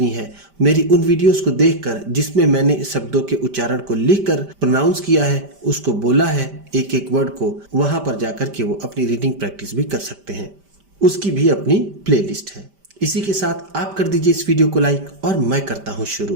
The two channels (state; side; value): late; left; 5.1 ms